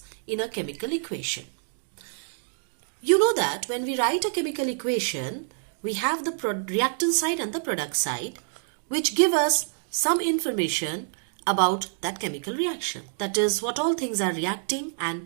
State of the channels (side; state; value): left; silent; digital silence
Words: in a chemical equation. You know that when we write a chemical equation, we have the reactant side and the product side, which give us some information about that chemical reaction. That is, what all things are reacting